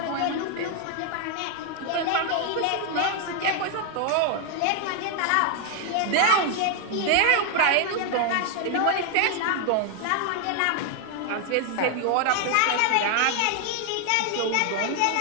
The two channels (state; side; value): different; both; correlation 0.00